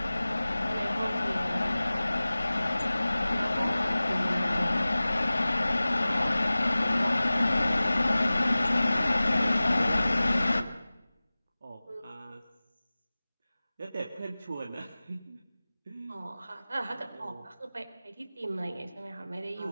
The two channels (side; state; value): both; inverted; correlation -0.98